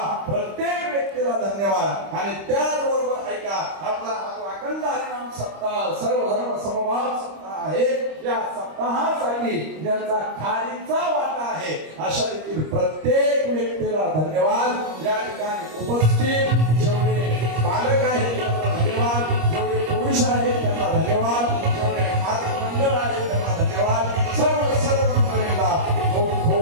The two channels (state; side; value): late; left; 25 ms